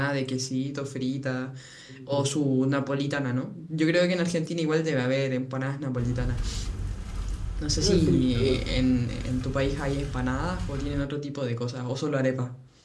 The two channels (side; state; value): both; identical; correlation 1.00